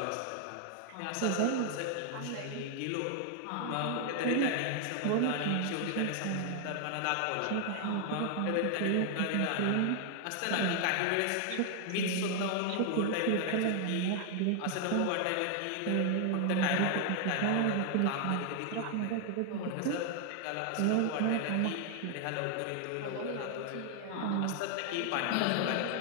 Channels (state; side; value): different; both; correlation 0.00